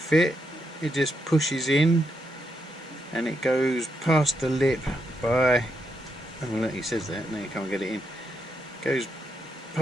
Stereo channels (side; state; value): both; normal; correlation 0.81